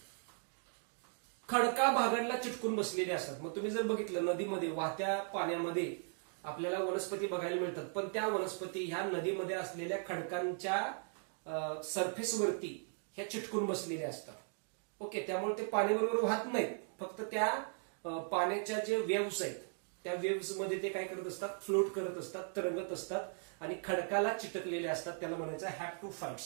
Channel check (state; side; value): silent; left; 52 dB below the other